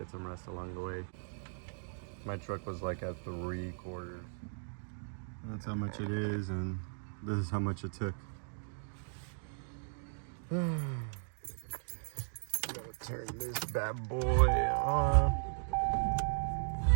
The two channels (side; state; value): left; silent; digital silence